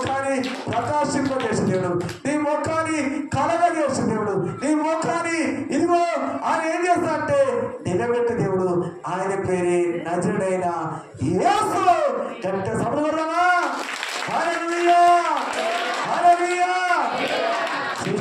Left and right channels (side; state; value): both; identical; correlation 1.00